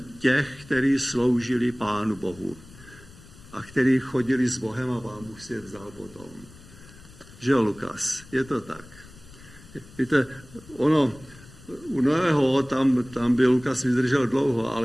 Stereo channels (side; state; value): left; noise; rumble, 21 dB below the sound